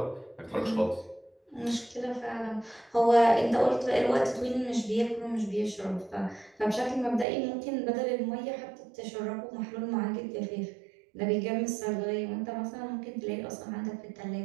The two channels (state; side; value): drops out; left; at 7.2 s